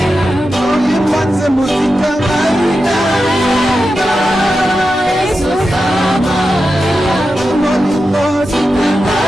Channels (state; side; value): normal; both; correlation 0.90